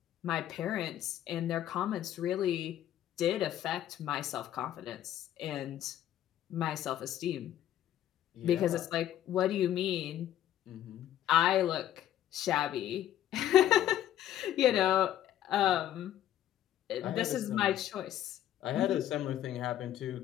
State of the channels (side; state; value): right; quieter; 11.9 dB